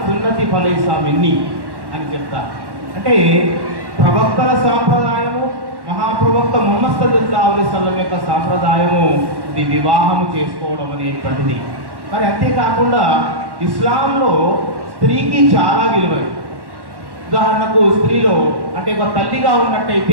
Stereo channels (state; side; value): late; left; 1.1 ms